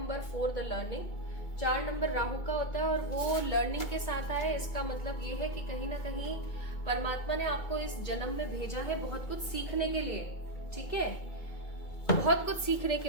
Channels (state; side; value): late; right; 2.2 ms